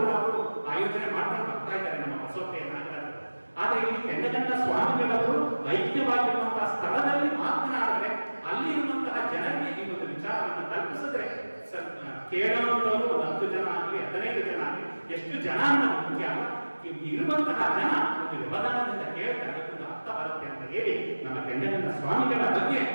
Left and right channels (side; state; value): both; inverted; correlation -1.00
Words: ಕೂಡ ಅವರು ಆಯೋಜನೆ ಮಾಡ್ಕೊಂಡು ಬರ್ತಾ ಇದ್ದಾರೆ ನಮ್ಮ ಬಸವಪ್ರಿಯ ನಾಯಕರು. ಆದ್ರೆ ಇಲ್ಲಿ ಕೆಂಡಗಂಡ ಸ್ವಾಮಿಗಳವರು ಐಕ್ಯವಾಗಿರುವಂತಹ ಸ್ಥಳದಲ್ಲಿ ಮಾತನಾಡಿದ್ರೆ ಅಲ್ಲಿ ಇರುವಂತಹ ಜನರಿಗೆ ಈ ಒಂದು ವಿಚಾರವನ್ನು ತಲುಪಿಸಿದ್ರೆ ಕೇಳುವಂತವರು 10 ಜನ ಆಗಲಿ 15 ಜನ ಆಗಲಿ ಎಷ್ಟು ಜನ ಅಂತ ಮುಖ್ಯ ಅಲ್ಲ. ಇರುವಂತಹ ಜನ ಒಂದು ವ್ಯವಧಾನದಿಂದ ಕೇಳ್ತಾರೆ, ಒಂದು ಅರ್ಥ ಬರುತ್ತೆ ಅಂತ ಹೇಳಿ ನಮ್ಮ ಕೆಂಡಗಂಡ ಸ್ವಾಮಿಗಳ ಬಗ್ಗೆ